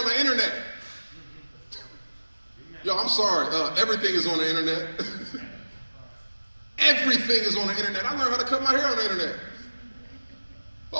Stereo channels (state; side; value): inverted; both; correlation -1.00